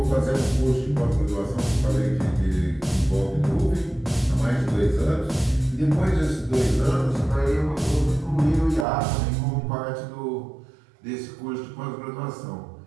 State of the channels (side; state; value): left; drops out; at 8.8 s